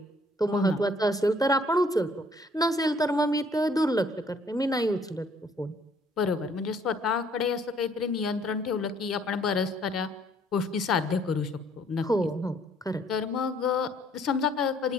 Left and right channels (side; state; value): both; normal; correlation 0.62